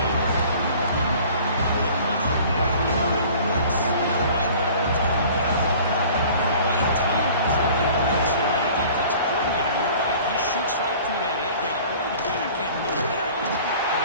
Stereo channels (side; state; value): both; inverted; correlation -0.47